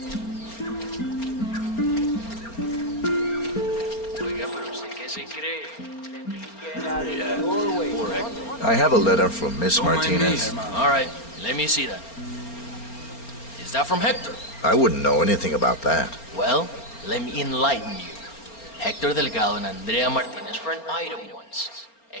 I have a letter from Miss Martinez. All right, let me see that. Is that from Hector? I wouldn't know anything about that. Well, let me enlighten you. Hector Delgado and Andrea Martinez were an item once.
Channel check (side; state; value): right; late; 4.3 ms